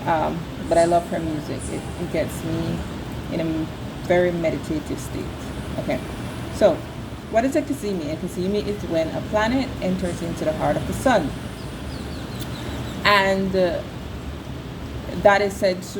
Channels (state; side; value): identical; both; correlation 1.00